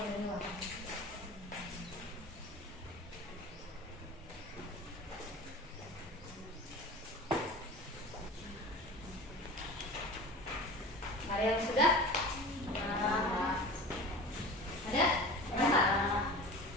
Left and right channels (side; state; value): both; normal; correlation 0.35